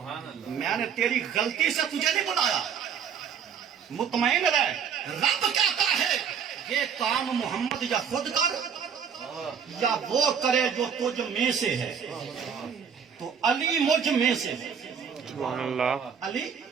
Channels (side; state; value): left; quieter; 7.2 dB